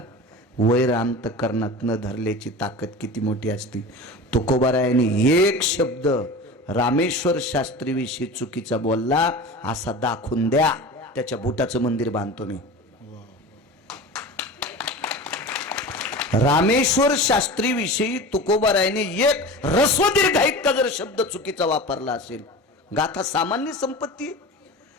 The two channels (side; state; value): both; normal; correlation 0.33